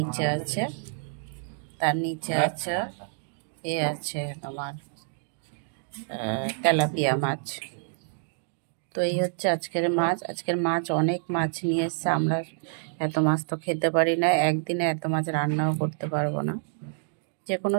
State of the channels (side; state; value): left; silent; digital silence